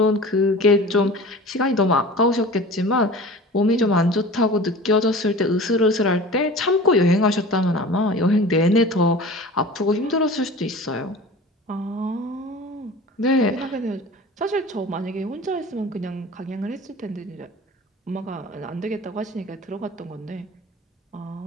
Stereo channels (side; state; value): both; normal; correlation 0.38